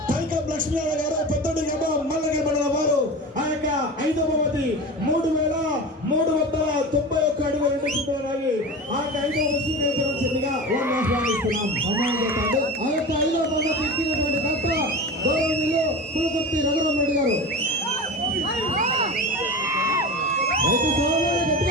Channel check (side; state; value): both; normal; correlation 0.29